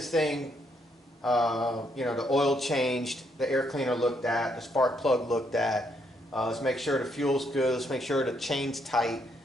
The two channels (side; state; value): both; normal; correlation 0.74